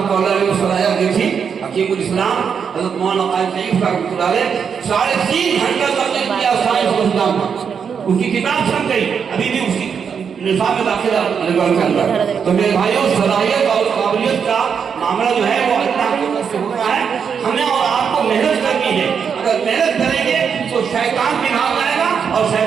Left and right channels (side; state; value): left; quieter; 6.8 dB